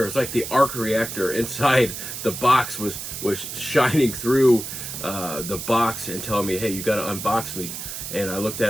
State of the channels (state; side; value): noise; right; hiss, 7 dB below the sound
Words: It's like the arc reactor inside the box was shining through the box and telling me, "Hey, you got to unbox me." And I looked at